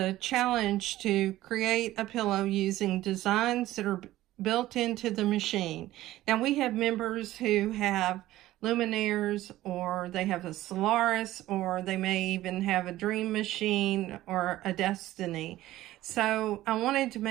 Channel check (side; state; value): left; quieter; 15.5 dB